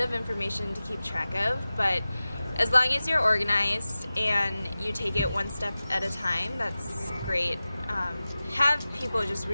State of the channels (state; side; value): inverted; both; correlation -0.96